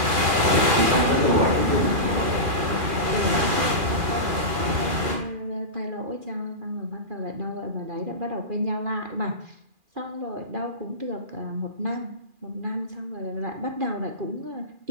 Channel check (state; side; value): late; left; 2.4 ms